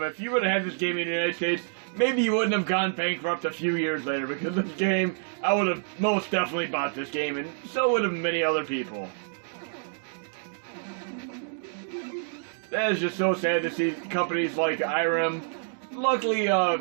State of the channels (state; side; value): silent; left; digital silence